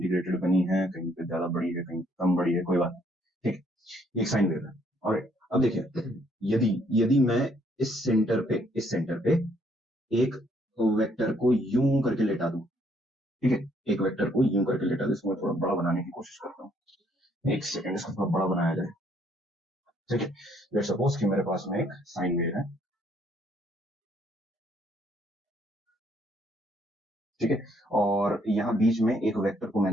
बनी है, कहीं पे ज्यादा बड़ी है, कहीं कम बड़ी है, कोई बात नहीं, ठीक है, ये एक साइन वेव है। ऑलराइट, अब देखिए, यदि मैं इस सेंटर पे एक वेक्टर को यूं करके लेटा दूं, ठीक है, एक वेक्टर को यूं करके लेटा दूं, इसको मैं थोड़ा बड़ा बनाने की कोशिश करता हूँ, एक सेकंड, इसको थोड़ा बड़ा बनाया जाए, ठीक है। लेट्स सपोज कि मेरे पास में एक साइन वेव है, ठीक है, और यहाँ बीच में एक वेक्टर को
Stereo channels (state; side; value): normal; both; correlation 0.67